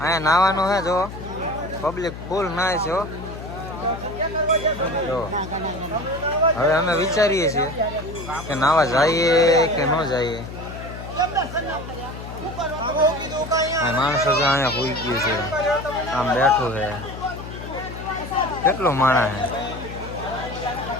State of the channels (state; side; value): noise; left; hum, 11 dB below the sound